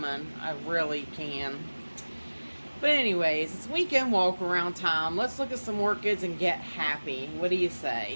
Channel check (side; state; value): both; inverted; correlation -1.00